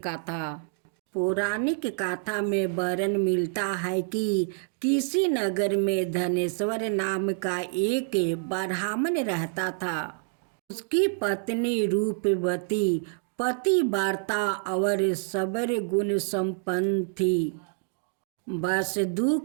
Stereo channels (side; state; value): left; silent; 58 dB below the other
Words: कथा। पौराणिक कथा में वर्णन मिलता है कि किसी नगर में धनेश्वर नाम का एक ब्राह्मण रहता था। उसकी पत्नी रूपवती, पतिव्रता और सबर गुण संपन्न थी। बस